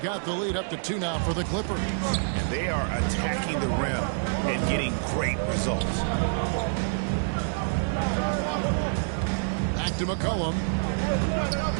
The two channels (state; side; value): silent; left; digital silence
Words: the lead up to 2 now for the Clippers. And they are attacking the rim and getting great results. Back to McCollum.